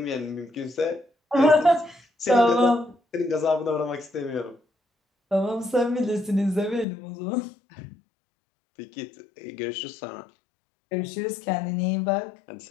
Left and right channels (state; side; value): drops out; right; at 6.9 s